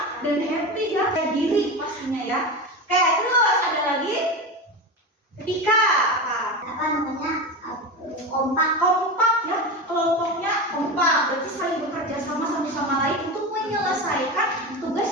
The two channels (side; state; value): both; normal; correlation 0.22